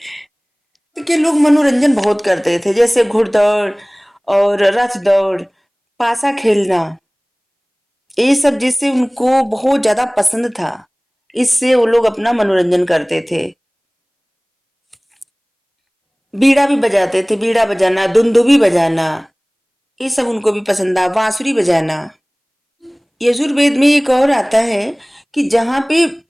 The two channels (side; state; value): both; identical; correlation 1.00